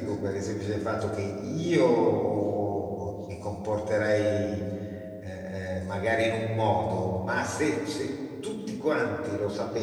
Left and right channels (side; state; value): both; identical; correlation 1.00